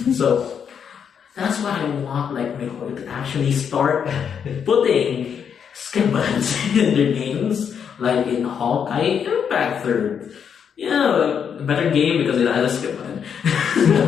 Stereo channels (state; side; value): quieter; right; 7.5 dB